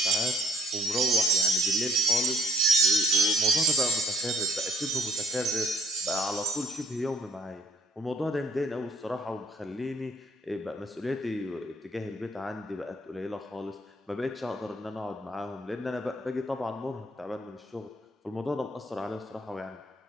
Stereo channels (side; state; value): both; normal; correlation 0.58